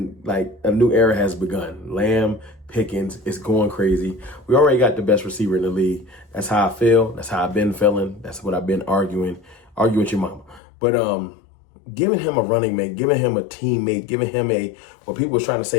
has begun. Lamb, Pickens is going crazy. We already got the best receiver in the league. That's how I feel. That's how I've been feeling. That's what I've been arguing with your mama. But giving him a running mate, giving him a teammate, giving him what people was trying to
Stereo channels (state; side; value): drops out; right; at 10.6 s